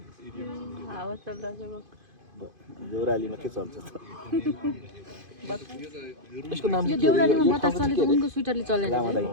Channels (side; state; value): left; late; 2.5 ms